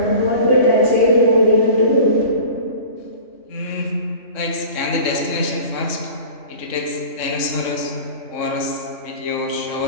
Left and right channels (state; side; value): late; right; 3.1 ms